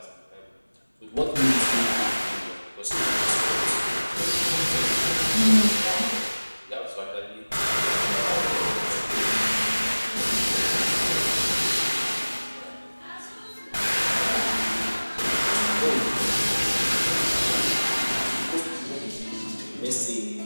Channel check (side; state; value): both; inverted; correlation -1.00